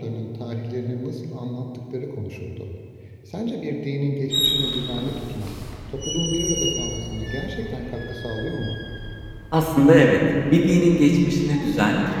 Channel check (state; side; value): identical; both; correlation 1.00